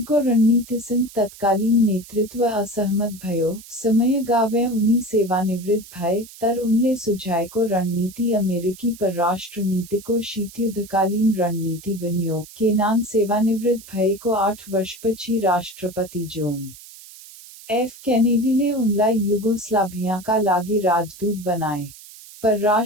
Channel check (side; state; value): right; noise; hiss, 18 dB below the sound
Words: रणनीतिसँग तत्कालीन नेतृत्व असहमत भयो। समय गावे उनी सेवानिवृत्त भए, तर उनले सुझाएको रणनीति अमेरिकी परराष्ट्र नीतिको शीतयुद्धकालीन रणनीति बन्यो। केनान सेवानिवृत्त भएको 8 वर्षपछि राष्ट्रपति जोन एफ केनेडीले उनलाई युगोस्लाभियाका लागि राजदूत बनाए।